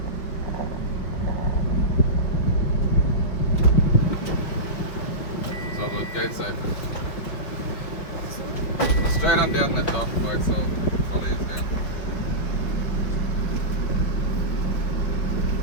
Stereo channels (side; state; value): right; late; 5.3 ms